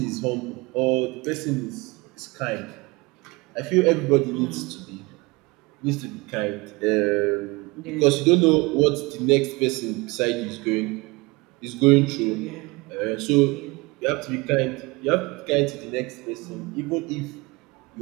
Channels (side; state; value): left; quieter; 24.5 dB